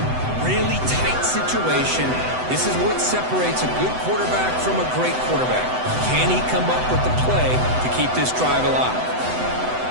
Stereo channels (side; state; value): left; late; 7.9 ms